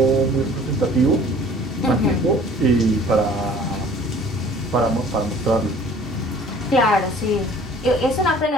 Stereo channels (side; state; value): both; normal; correlation 0.50